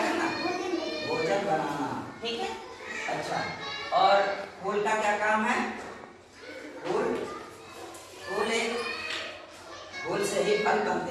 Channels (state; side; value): identical; both; correlation 1.00